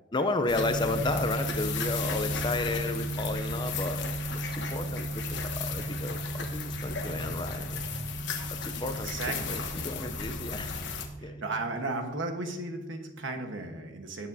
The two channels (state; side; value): normal; both; correlation 0.42